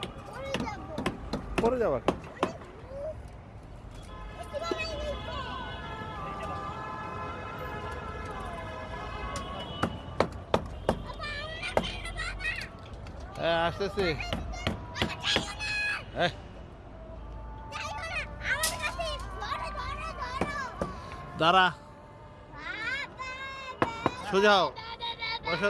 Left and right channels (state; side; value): identical; both; correlation 1.00